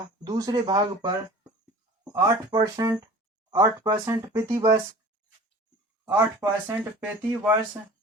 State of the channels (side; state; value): both; normal; correlation 0.42